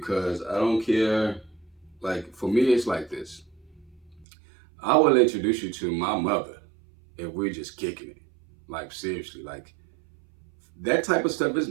I don't care. Like for me, it's like this. I will introduce you to my mother if we're just kicking it. Like seriously, like that type of stuff is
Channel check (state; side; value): drops out; left; at 4.2 s